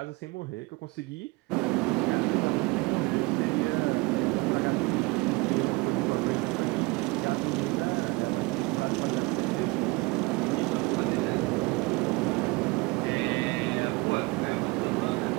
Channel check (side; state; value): left; quieter; 25.0 dB